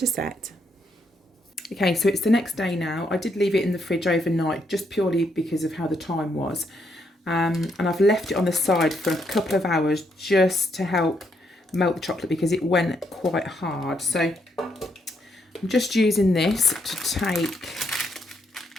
set. Okay, so it's the next day now. I did leave it in the fridge overnight just purely because of how the time was. And I've left it on the side for a couple of hours just to help melt the chocolate because it went quite hard. So I'm just using this to take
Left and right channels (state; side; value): normal; both; correlation 0.76